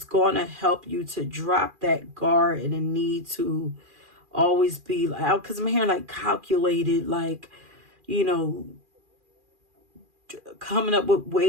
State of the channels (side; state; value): left; late; 2.4 ms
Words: going to help you to drop that guard and the need to always be like, because I'm hearing like calculated, like, coming up with